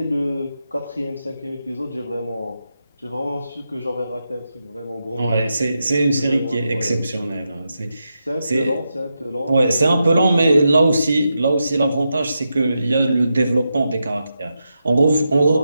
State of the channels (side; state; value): both; inverted; correlation -0.87